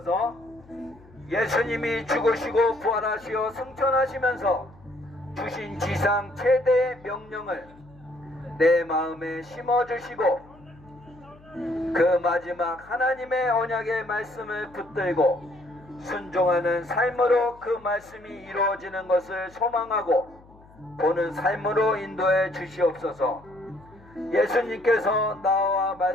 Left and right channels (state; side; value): noise; left; hum, 25 dB below the sound